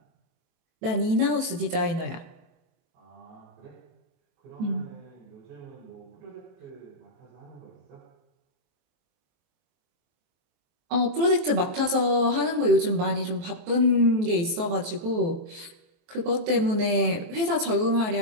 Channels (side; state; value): left; late; 23 ms